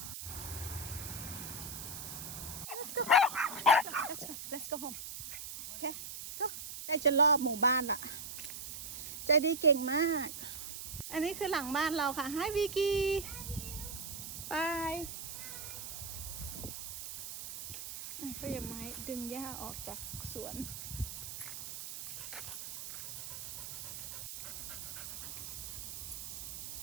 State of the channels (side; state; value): right; noise; hiss, 8 dB below the sound